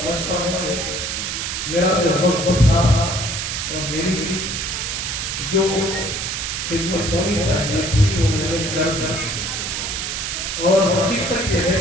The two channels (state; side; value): noise; right; hiss, 3 dB below the sound